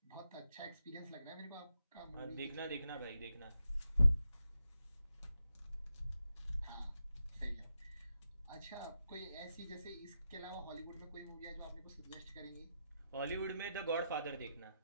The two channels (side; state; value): both; inverted; correlation -0.87